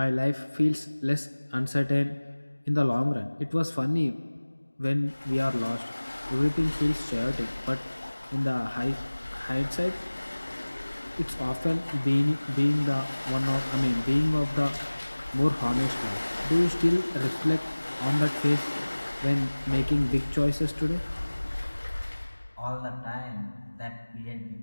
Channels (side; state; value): both; inverted; correlation -1.00